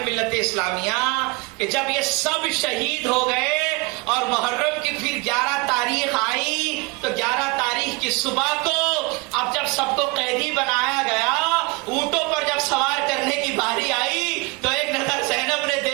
ملت اسلامیہ کہ جب یہ سب شہید ہو گئے اور محرم کی پھر 11 تاریخ آئی تو 11 تاریخ کی صبح کو اب جب سب کو قیدی بنایا گیا، اونٹوں پر جب سوار کرنے کی باری آئی تو ایک نظر زینب نے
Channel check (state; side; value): quieter; left; 27.2 dB